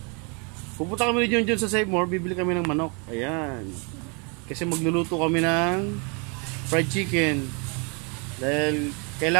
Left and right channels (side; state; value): left; quieter; 34.1 dB